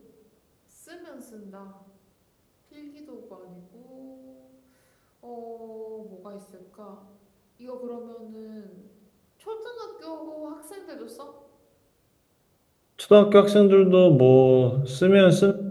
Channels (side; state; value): both; identical; correlation 1.00